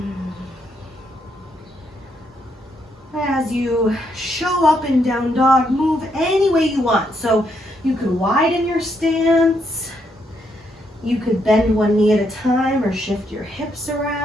As you show up in down dog, move any way you want. So you could widen your stance, you could bend one knee at a time or shift your hips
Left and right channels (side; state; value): both; normal; correlation 0.76